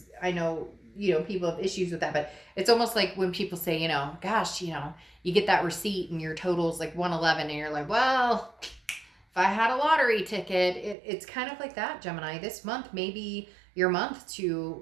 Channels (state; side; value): drops out; left; at 11.0 s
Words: I know people have issues with that, but it's almost like when people say, gosh, you get that receipt and your total's like 111 and you're like, well, if I had a lottery ticket, it's kind of like that, Gemini. This month may be your month to